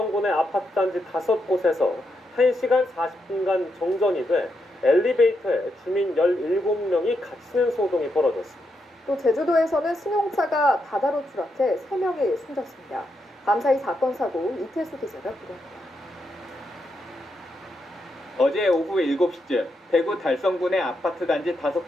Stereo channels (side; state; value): both; normal; correlation 0.82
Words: 아파트 단지 5곳에서 1시간 40분간 정전이 돼 엘리베이터에 주민 17명이 갇히는 소동이 벌어졌습니다. 또 제주도에서는 승용차가 바다로 추락해 3명이 숨졌습니다. 밤사이 사건 사고 이태수 기자가 보도합니다. 어제 오후 7시쯤 대구 달성군의 아파트 단지